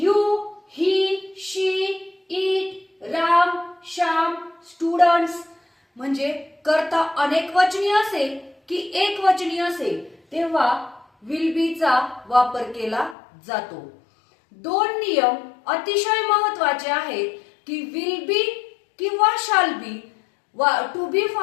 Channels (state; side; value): drops out; right; at 13.2 s